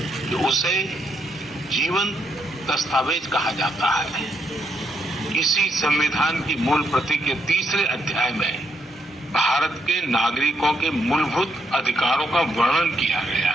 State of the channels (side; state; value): both; normal; correlation 0.76